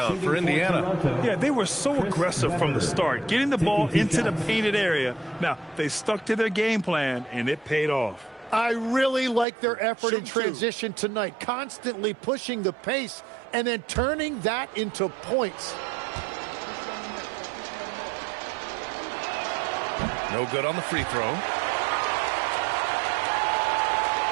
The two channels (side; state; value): left; drops out; at 9.5 s